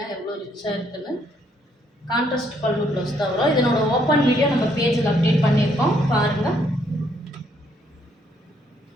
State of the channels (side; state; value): both; normal; correlation 0.70